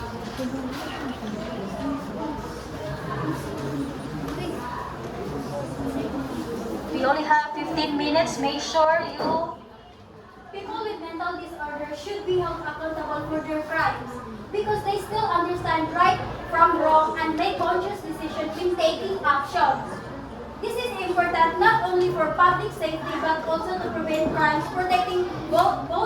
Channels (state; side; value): identical; both; correlation 1.00